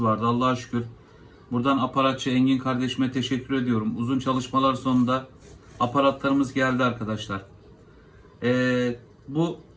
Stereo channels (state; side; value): identical; both; correlation 1.00